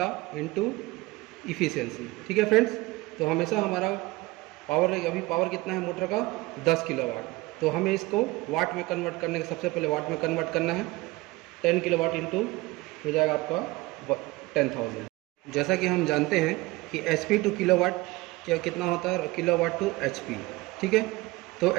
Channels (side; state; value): left; quieter; 21.1 dB